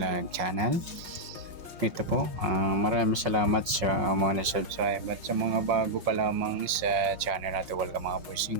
channel. Ito po, maraming salamat sa mga na-subscribe at sa mga bago pa lamang sa channel natin. Welcome mga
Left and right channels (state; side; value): late; left; 5.5 ms